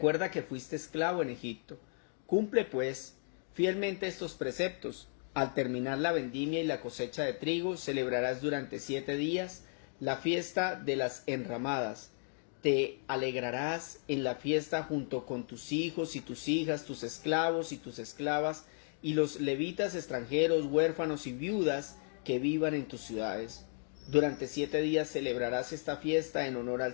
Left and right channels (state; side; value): silent; right; 55 dB below the other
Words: que fuiste esclavo en Egipto. Cumple, pues, fielmente estos preceptos. Al terminar la vendimia y la cosecha de trigo, celebrarás durante 7 días la fiesta de las enramadas. Te alegrarás en la fiesta junto con tus hijos y tus hijas, tus esclavos y tus esclavas, y los levitas extranjeros, huérfanos y viudas que vivan en tus ciudades. Durante 7 días celebrarás esta fiesta en honor al